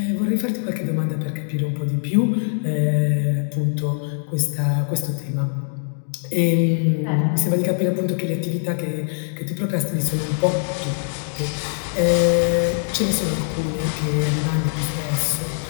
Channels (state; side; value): silent; right; digital silence